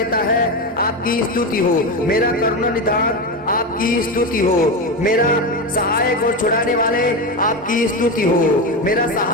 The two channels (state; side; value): normal; both; correlation 0.17